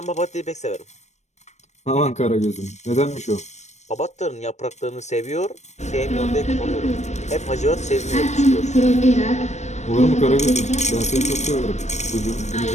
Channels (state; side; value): late; right; 0.33 ms